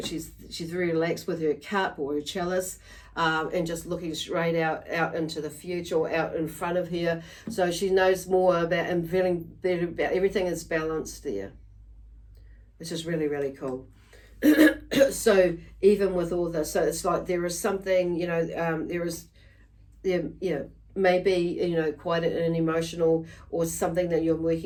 very relaxed with her cup or her chalice, and just looking straight out into the future, or out in front of her. So she knows more about and feeling better about everything is balanced there, which is really, really cool. So even with all this, so it's like there is something, you know, maybe, you know, quite an emotional or something that you're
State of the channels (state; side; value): identical; both; correlation 1.00